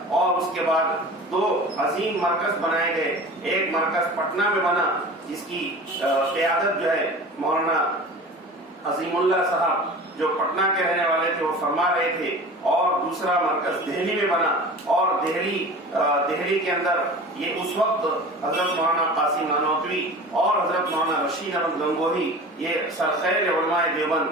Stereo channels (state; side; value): normal; both; correlation 0.37